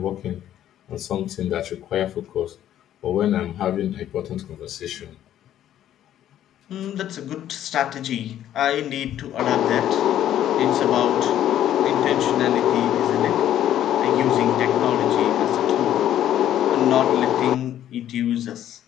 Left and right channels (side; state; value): right; quieter; 11.5 dB